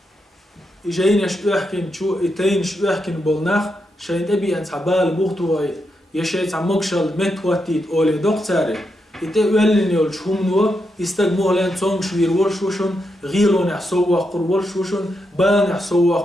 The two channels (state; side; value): normal; both; correlation 0.84